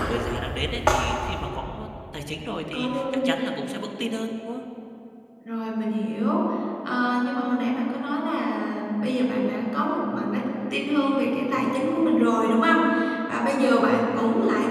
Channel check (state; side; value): identical; both; correlation 1.00